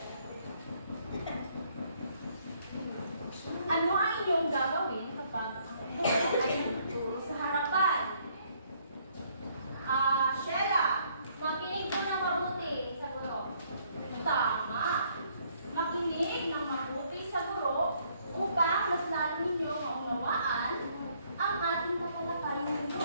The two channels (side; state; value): both; inverted; correlation -0.67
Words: Ano ang inyong gagawin kapag ang buhok ay nagtuturo sa harapan? Sheila, makinig ko ng mabuti sa guro. Tama. Makinig ng mabuti sa guro upang mas lalo ninyo maunawaan ang ating tatalakayin